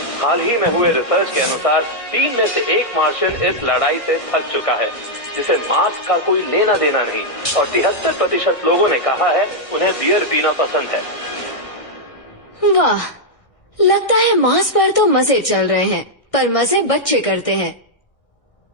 हाल ही में हुए रिसर्च के अनुसार 3 में से 1 मार्शियन इस लड़ाई से थक चुका है, जिसे मार्स का कोई लेना देना नहीं, और 73% लोगों ने कहा है उन्हें बियर पीना पसंद है। वाह, लगता है मार्स पर तो मजे चल रहे हैं, पर मजे बच्चे करते हैं।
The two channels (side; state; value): right; late; 1.6 ms